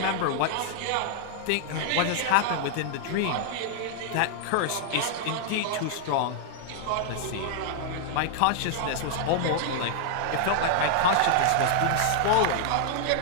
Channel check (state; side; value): different; both; correlation -0.01